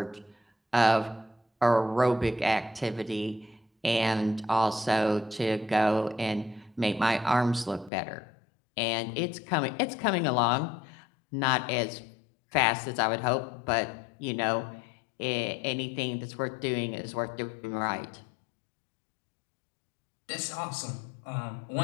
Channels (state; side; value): drops out; right; at 7.9 s